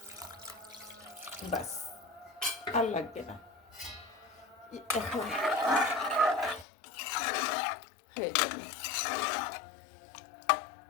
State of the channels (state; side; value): drops out; right; at 6.7 s